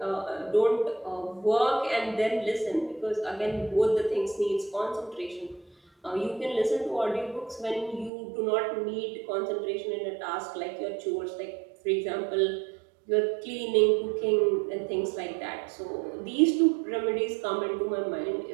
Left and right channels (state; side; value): drops out; left; at 8.1 s